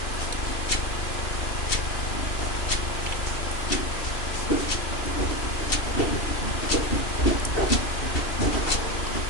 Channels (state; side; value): late; right; 2.7 ms